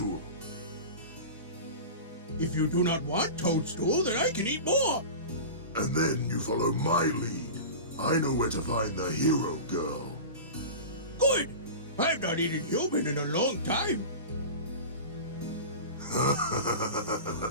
If you do not want toadstool, then I can eat more. And then you follow my lead. I know where to find the hero girl. Good. I've not eaten human in a long time.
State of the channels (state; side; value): inverted; both; correlation -0.30